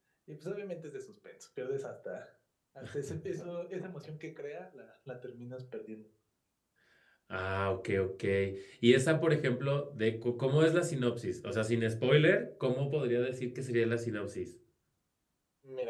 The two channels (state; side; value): identical; both; correlation 1.00